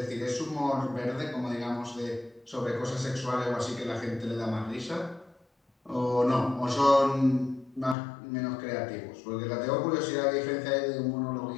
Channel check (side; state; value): right; drops out; at 8.0 s